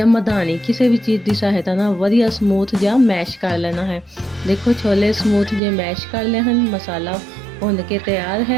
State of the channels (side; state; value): left; drops out; at 5.6 s